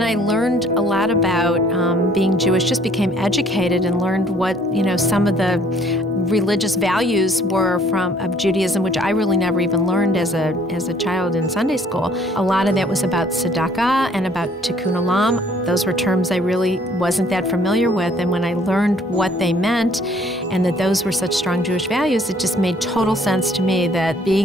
I learned a lot about being Jewish, just became educated and learned what some of the religious values were of Judaism, which I really never even learned as a child in Sunday school. A lot of that was about tzedakah and about tikkun olam. Those were terms I really wasn't that familiar with, and when I learned what they meant and that those were such strong Jewish values, it just made total sense to me that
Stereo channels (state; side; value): normal; both; correlation 0.60